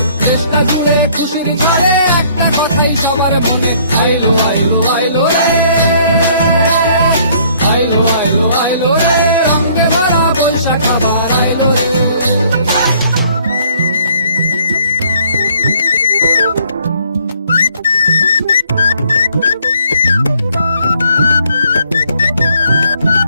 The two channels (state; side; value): inverted; both; correlation -0.62